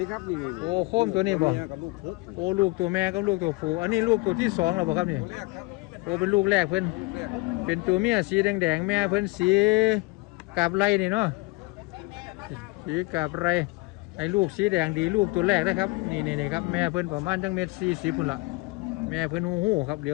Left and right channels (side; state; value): right; quieter; 24.9 dB